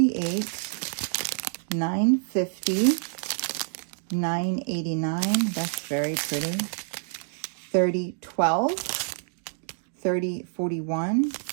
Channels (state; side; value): silent; left; digital silence